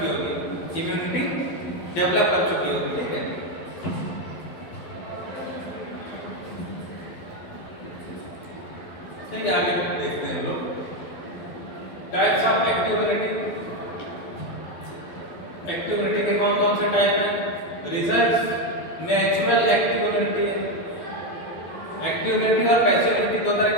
होगी, इम्यूनिटी डेवलप कर चुकी होगी, ठीक है। ठीक है, आगे देखते हैं हम लोग types of active immunity. Active immunity के कौन कौन से टाइप हैं? रिजल्ट नेचुरल एक्टिव इम्यूनिटी है। एक्टिव इम्यूनिटी और पैसिव इम्यूनिटी दो तरह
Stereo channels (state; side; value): late; right; 12 ms